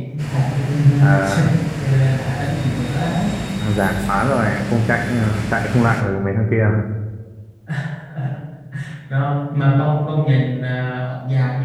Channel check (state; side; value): identical; both; correlation 1.00